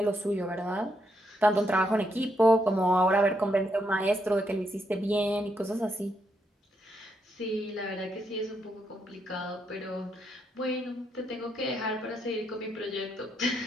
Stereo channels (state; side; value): normal; both; correlation 0.78